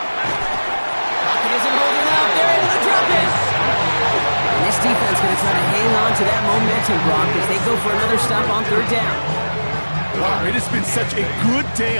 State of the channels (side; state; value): both; inverted; correlation -1.00